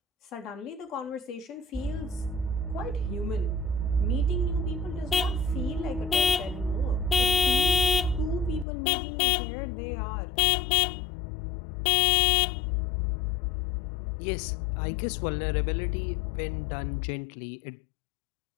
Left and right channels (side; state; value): right; drops out; at 8.7 s